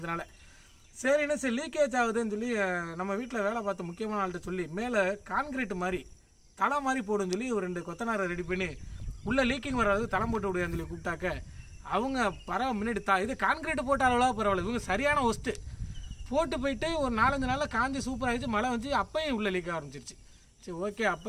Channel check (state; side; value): identical; both; correlation 1.00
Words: சரின்னு சரி லீக்கேஜ் ஆகுதுன்னு சொல்லி நம்ம வீட்டில் வேலை பார்த்த முக்கியமான ஆள்கிட்ட சொல்லி மேலே கான்கிரீட் மாதிரி தலை மாதிரி போடுன்னு சொல்லி ஒரு 2 கொத்தனாரை ரெடி பண்ணி உள்ள லீக்கிங் வராது தலை போட்டு விடுவான்னு சொல்லி கூப்பிட்டாக்க அவங்க பரவாயில்ல முன்னாடி இது கான்கிரீட் போட்ட அளவுலாம் பரவாயில்ல, இவங்க சரியான ஒஸ்ட்டு போட்டு போயிட்டு ஒரு 4-5 நாளில் காஞ்சி சூப்பர் ஆகிடுச்சு. மழை வந்து அப்பையும் உள்ள லீக் ஆரம்பிச்சிருச்சு. சரி ஓகே,